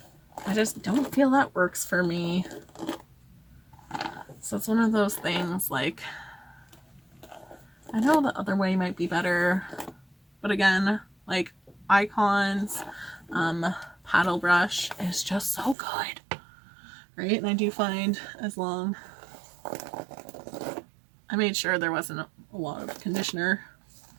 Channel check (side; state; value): left; drops out; at 15.8 s